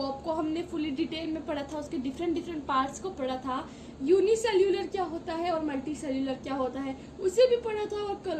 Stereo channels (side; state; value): both; identical; correlation 1.00